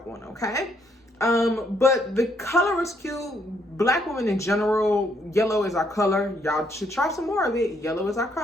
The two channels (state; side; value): normal; both; correlation 0.71